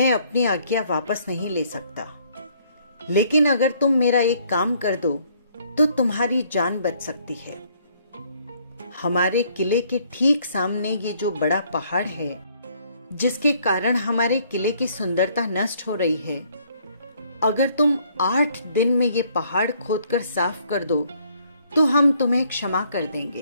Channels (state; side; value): inverted; both; correlation -0.64